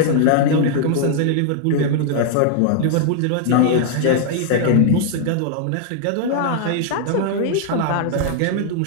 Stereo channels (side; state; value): both; different; correlation -0.01